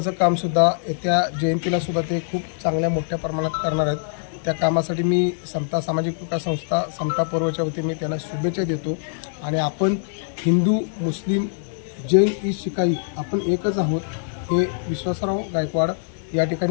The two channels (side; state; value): right; silent; digital silence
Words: कामसुद्धा येत्या जयंतीलासुद्धा ते खूप चांगल्या मोठ्या प्रमाणात करणार आहेत. त्या कामासाठी मी समता सामाजिक विकास संस्था समता पर्वच्या वतीने मी त्यांना शुभेच्छा देतो. आणि आपण हिंदू, मुस्लिम, जैन, शिखाई आपण एकच आहोत हे विश्वासराव गायकवाड या